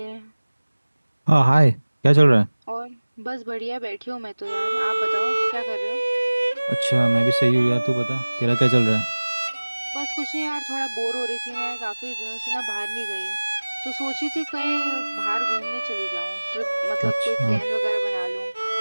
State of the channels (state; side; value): inverted; both; correlation -1.00